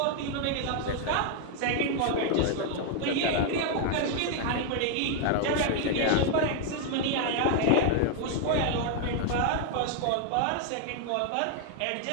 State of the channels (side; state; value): both; different; correlation 0.00